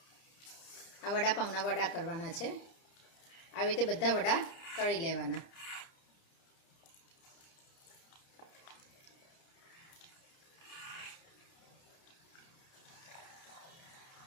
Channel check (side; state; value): right; late; 30 ms